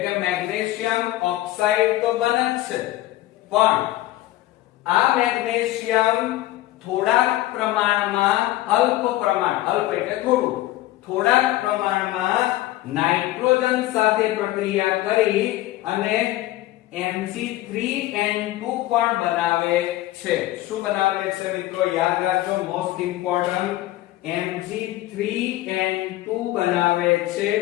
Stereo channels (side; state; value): right; quieter; 16.1 dB